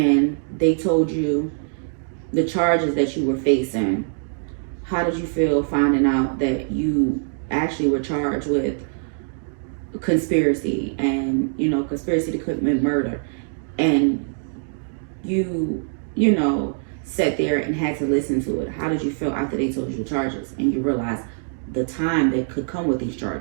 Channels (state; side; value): silent; left; digital silence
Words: they told you the charges that you were facing, how did you feel finding out that you actually were charged with conspiracy and, conspiracy to commit murder, and you sat there and had to listen to it? How did you feel after they told you the charges and you realized the time that could come with these